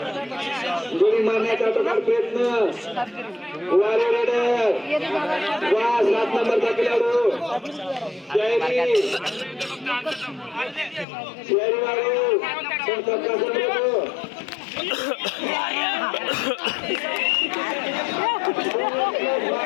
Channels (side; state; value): right; drops out; at 11.1 s